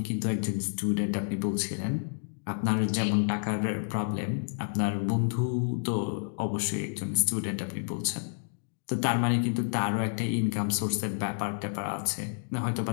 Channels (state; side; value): silent; right; digital silence